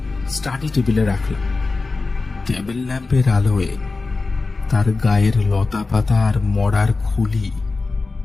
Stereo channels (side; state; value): right; quieter; 3.8 dB